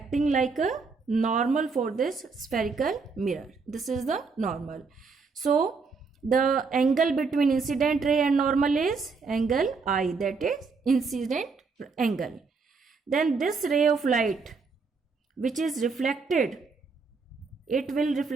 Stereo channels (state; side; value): quieter; left; 4.6 dB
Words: like a normal for this spherical mirror. This is the normal. So the angle between incident ray and normal is angle I, that is incident angle. Then this ray of light which is reflected, it will